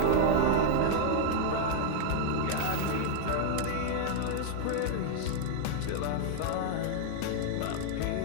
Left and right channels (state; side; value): different; both; correlation -0.01